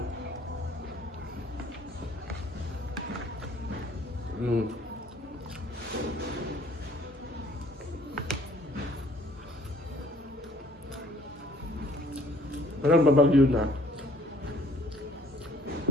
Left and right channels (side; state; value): both; normal; correlation 0.58